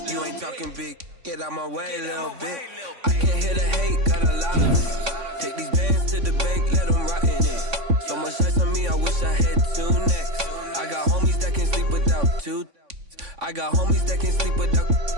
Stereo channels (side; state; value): left; late; 3.5 ms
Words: You ain't talking big. Get out my way, little bit. I can't hear the hate, got a lot of it. Take these bands to the bank, let them rot in it. So much ice on me, I wish I had 2 necks. I got homies that can sleep without 2. I got homies that can sleep without